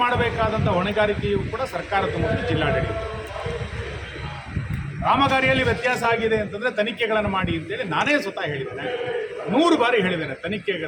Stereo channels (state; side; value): identical; both; correlation 1.00